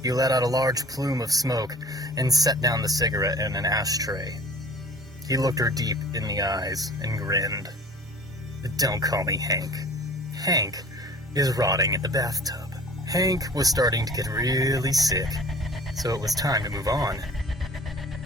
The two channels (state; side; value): normal; both; correlation 0.46